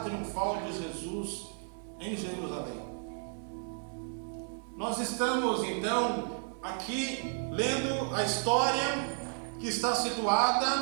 de Jesus em Jerusalém. Nós estamos então aqui lendo a história que está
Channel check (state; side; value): silent; left; 56 dB below the other